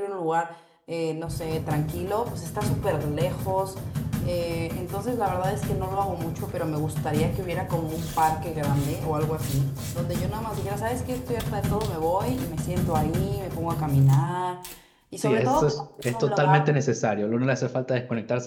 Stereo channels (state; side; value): identical; both; correlation 1.00